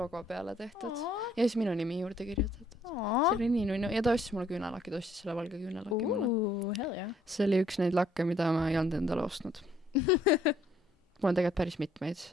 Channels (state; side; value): normal; both; correlation 0.65